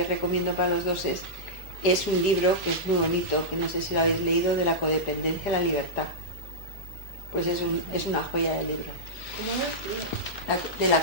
recomiendo para los 2 es un libro que es muy bonito, que no sé si lo habéis leído, de la codependencia a la libertad. Pues es una joya de libro. ¿Cómo es? De la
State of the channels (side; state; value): left; late; 2.9 ms